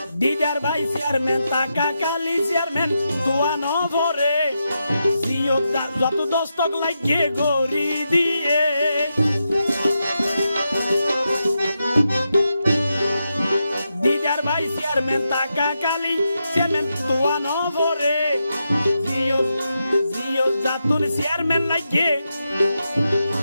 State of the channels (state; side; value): inverted; both; correlation -0.86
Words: দিদার ভাই চেয়ারম্যান টাকা কালি চেয়ারম্যান দোয়া ন ধরে, যত দস্তক লাগিয়ে গড়ি দিয়ে, দিদার ভাই চেয়ারম্যান টাকা কালি চেয়ারম্যান দোয়া ন ধরে, জিও জাতুন চেয়ারম্যান লাগিয়ে